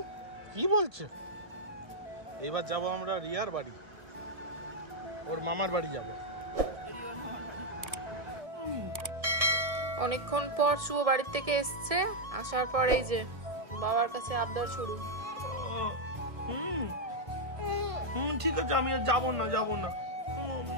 কি বলছো? এবার যাবো আমরা রিয়ার বাড়ি, ওর মামার বাড়ি যাবো। অনেকক্ষণ পর শুভ বাড়ির থেকে এসছে, আসার পর এই যে বাবার কাছে আবদার শুরু। ঠিক আছে, আমি আর যাবো না, যাবো না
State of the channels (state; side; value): late; left; 1.7 ms